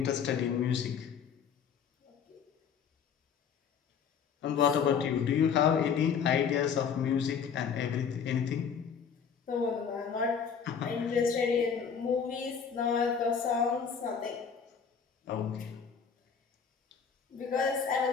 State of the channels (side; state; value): right; quieter; 6.9 dB